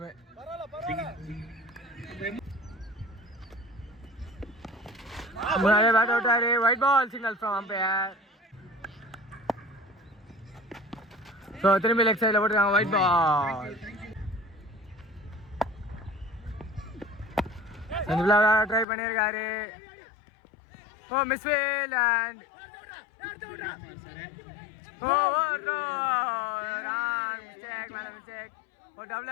முன்னாடியே பேட் அவுட்டாரு. Wide ball signal from umpire. So திரும்பி லெக் சைடில் போட்டுருக்காங்க ஒயிட் பால். ட்ரை பண்ணியிருக்காரு. Oh misfield and oh no wrong mistake. ஒரு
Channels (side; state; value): right; drops out; at 18.9 s